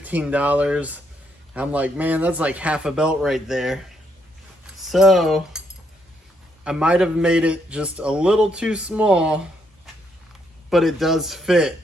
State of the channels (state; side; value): normal; both; correlation 0.74